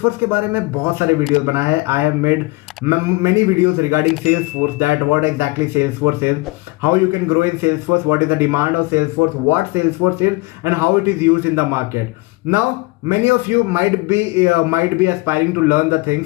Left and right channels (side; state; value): right; quieter; 23.1 dB